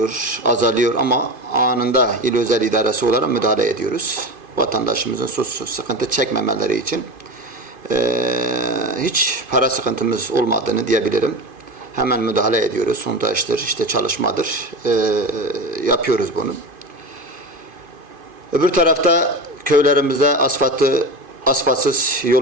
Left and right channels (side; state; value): left; late; 2.5 ms